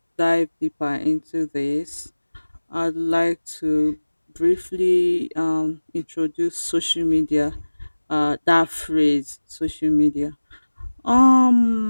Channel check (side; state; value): both; inverted; correlation -1.00